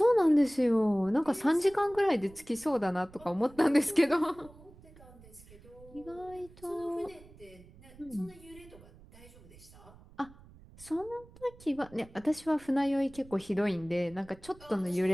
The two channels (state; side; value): noise; right; rumble, 22 dB below the sound